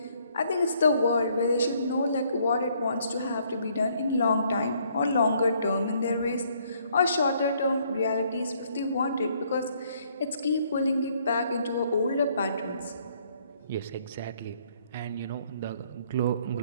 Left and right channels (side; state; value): both; inverted; correlation -0.66